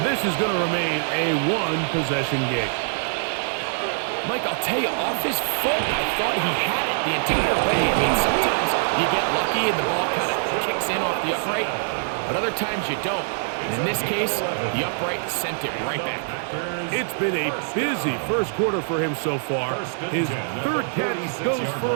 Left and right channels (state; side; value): silent; left; digital silence